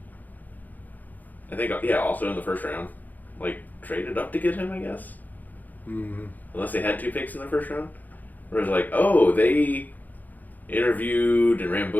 I think, also in the first round, like, traded up to get him, I guess. Unless they had 2 picks in the first round. Where it was like, oh, they interviewed and ran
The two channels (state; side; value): late; right; 0.083 ms